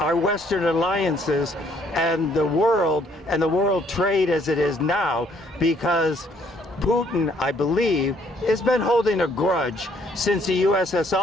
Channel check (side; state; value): both; normal; correlation 0.65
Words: Western alliances and the world trade as it is now, because Putin, I believe, has been holding a grudge since the